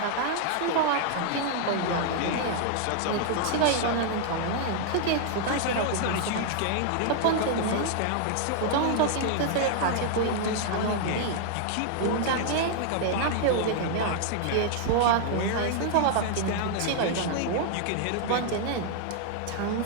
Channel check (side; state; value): both; different; correlation -0.01